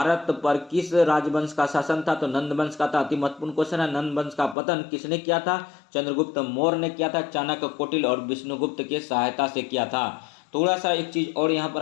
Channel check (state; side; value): drops out; right; at 4.5 s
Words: पर किस राजवंश का शासन था? तो नंद वंश का था। अति महत्वपूर्ण क्वेश्चन है, नंद वंश का पतन किसने किया था? चंद्रगुप्त मौर्य ने किया था। चाणक्य, कौटिल्य और विष्णुगुप्त के सहायता से किया था। थोड़ा सा एक चीज और यहाँ पर